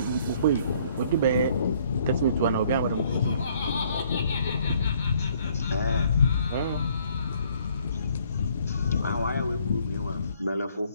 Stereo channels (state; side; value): inverted; both; correlation -0.63